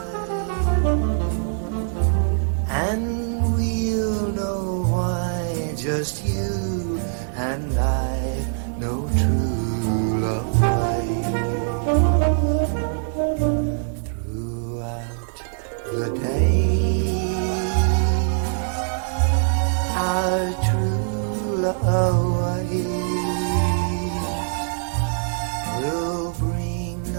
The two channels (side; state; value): left; silent; digital silence